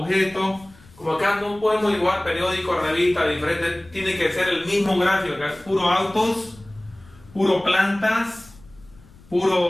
Como acá no podemos dibujar periódicos, revistas diferentes, tiene que ser el mismo gráfico. Acá es puro autos, puro plantas,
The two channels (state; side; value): noise; left; rumble, 25 dB below the sound